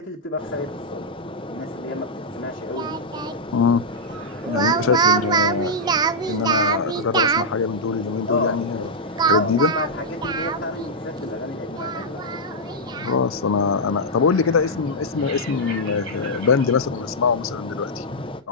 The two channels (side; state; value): both; normal; correlation -0.06